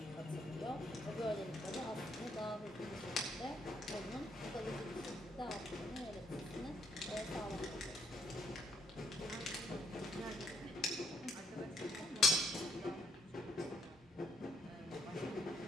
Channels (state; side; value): normal; both; correlation 0.71